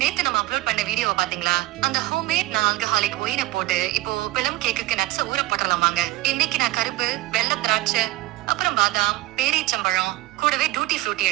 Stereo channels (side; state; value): left; quieter; 18.0 dB